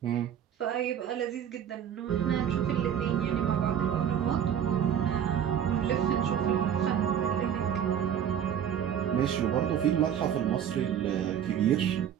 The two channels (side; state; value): left; quieter; 9.2 dB